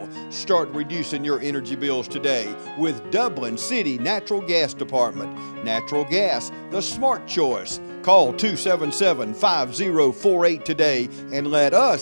Start reducing your energy bills today with Dublin City Natural Gas Department. Natural gas, the smart choice. Call 277-5048 today and let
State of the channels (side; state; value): both; inverted; correlation -1.00